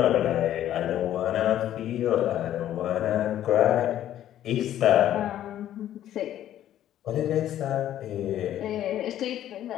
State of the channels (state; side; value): quieter; right; 11.9 dB